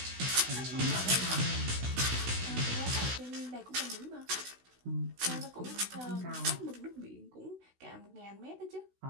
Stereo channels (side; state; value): left; late; 16 ms